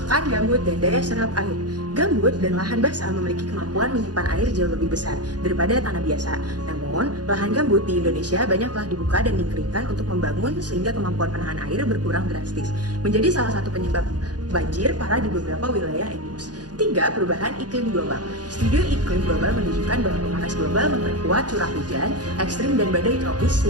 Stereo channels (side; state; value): left; late; 0.69 ms